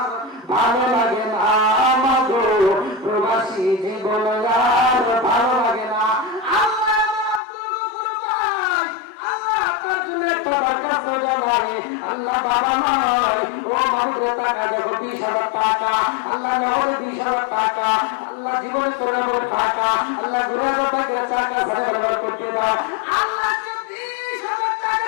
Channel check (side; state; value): right; drops out; at 7.4 s